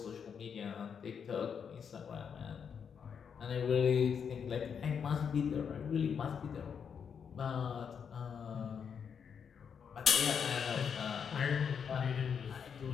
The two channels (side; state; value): right; quieter; 7.0 dB